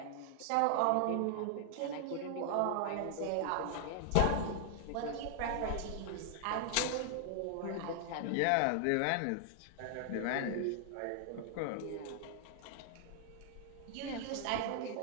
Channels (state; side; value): different; both; correlation 0.00